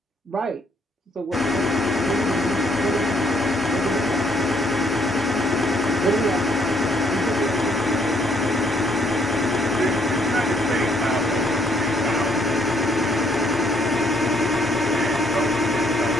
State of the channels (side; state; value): both; normal; correlation 0.68